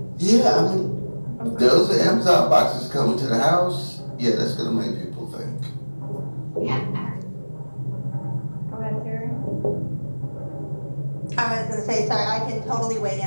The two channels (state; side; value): inverted; both; correlation -1.00